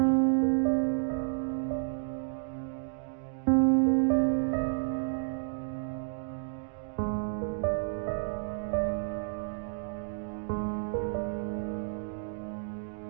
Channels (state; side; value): silent; left; digital silence